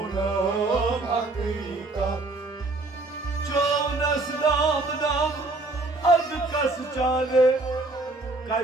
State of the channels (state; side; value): quieter; left; 3.0 dB